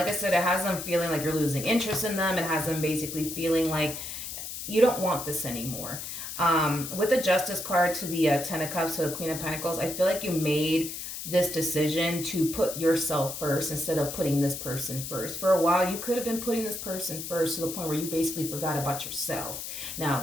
I said, it has them feeling like you're losing interest in them. It has them basically feeling like you don't want this anymore. With the Justice card to the Ten of Cups to the Queen of Pentacles, I feel like you made this decision to put yourself first instead of putting this person first. For a while, you could have been putting this person first to the point where you basically forgot about yourself.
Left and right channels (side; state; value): left; noise; hiss, 7 dB below the sound